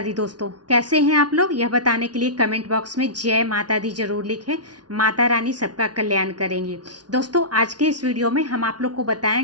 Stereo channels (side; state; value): left; late; 0.69 ms